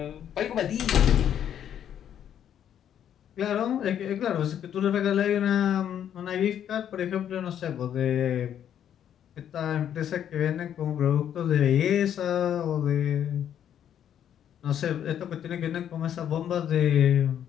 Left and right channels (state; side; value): quieter; right; 9.7 dB